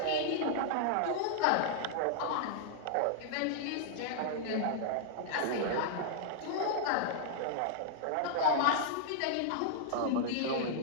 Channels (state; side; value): different; both; correlation -0.01